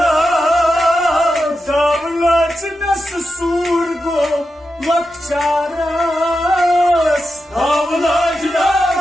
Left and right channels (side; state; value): both; normal; correlation 0.89